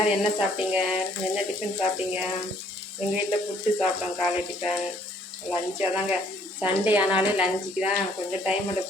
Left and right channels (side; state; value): both; normal; correlation 0.63